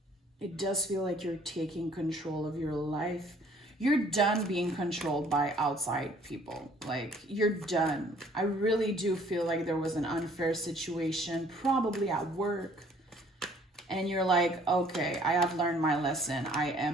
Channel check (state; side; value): normal; both; correlation 0.58